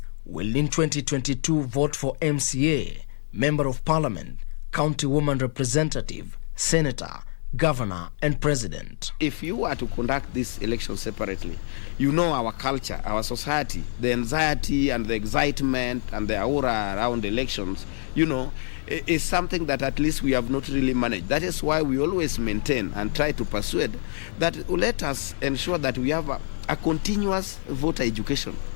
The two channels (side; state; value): right; silent; 61 dB below the other